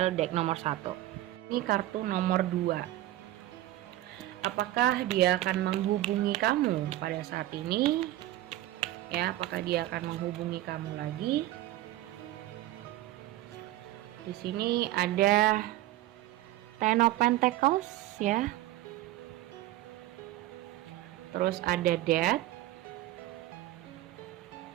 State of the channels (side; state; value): left; quieter; 15.3 dB